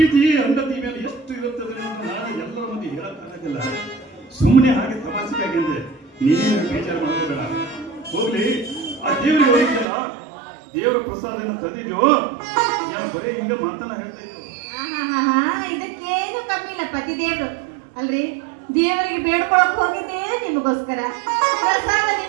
ಹೆಂಡತಿ ಮೇಲೆ ಎಷ್ಟು ಇರುತ್ತದೆ ಅಂತ ನಾನು ಎಲ್ಲರ ಮಂದಿ ಹೇಳಕ್ಕಾಗಲ್ಲ. ಸುಮ್ಮನೆ ಹಾಗೆ ತಮಾಷೆಗಾಗಿ ಅಂದೆ, ನೀನೇನು ಬೇಜಾರು ಮಾಡೋಬೇಡ. ಹೋಗ್ಲಿ, ಆ ದೇವರಿಗೆ ಹೋಗಿದ್ದಲ್ಲ, ದೇವರ ಪ್ರಸಾದನ ತಂದಿದ್ಯೋ ನಾನು ಬರೀ ಹಿಂಗ ಮಾತನ್ನ ಹೇಳ್ತಾ ಇದ್ದು. ಇದಕ್ಕೇನು ಕಮ್ಮಿ ಇಲ್ಲ ಪತಿ ದೇವ್ರು ಅಲ್ರಿ. ದೇವರಿಗೆ ಬೇಡ್ಕೊಳಕ್ ಹೋಗಿದ್ದೆ ನಿಮಗೋಸ್ಕರ. ಪ್ರಸಾದ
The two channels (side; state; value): left; drops out; at 9.9 s